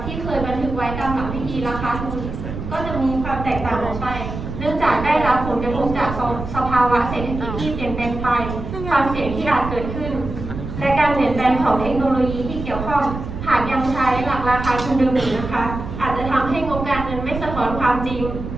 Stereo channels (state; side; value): noise; right; rumble, 7 dB below the sound